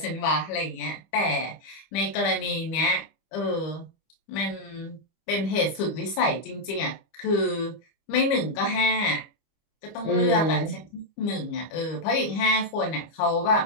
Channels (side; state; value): right; late; 25 ms